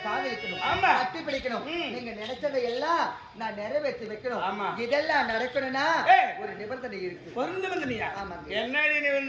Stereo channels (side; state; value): both; identical; correlation 1.00